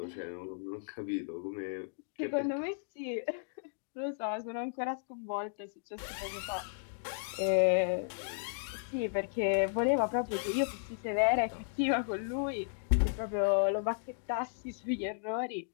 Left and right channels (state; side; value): silent; right; digital silence